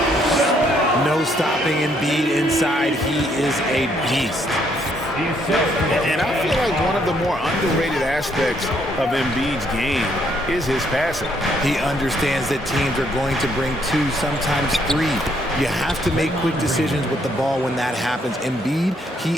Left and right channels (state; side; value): normal; both; correlation 0.70